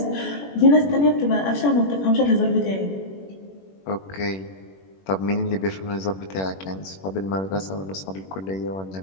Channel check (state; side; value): late; right; 21 ms